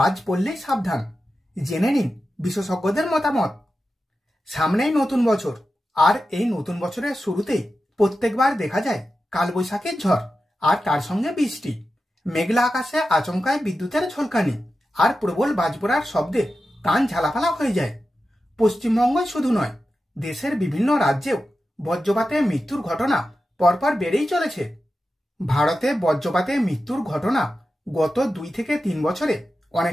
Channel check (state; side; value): normal; both; correlation 0.91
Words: পড়লেই সাবধান। জেনে নিন বিশেষজ্ঞদের মতামত। সামনেই নতুন বছর, আর এই নতুন বছরের শুরুতেই প্রত্যেকবার দেখা যায় কালবৈশাখীর ঝড়, আর তার সঙ্গে বৃষ্টি। মেঘলা আকাশে আচমকায় বিদ্যুতের ঝলকানি আর প্রবল বাজ পড়ার শব্দে কান ঝালাপালা হয়ে যায়। পশ্চিমবঙ্গই শুধু নয়, দেশের বিভিন্ন রাজ্যেও বজ্রপাতে মৃত্যুর ঘটনা পরপর বেড়েই চলেছে। ভারতে বজ্রপাতে মৃত্যুর ঘটনা গত 2 থেকে 3 বছরে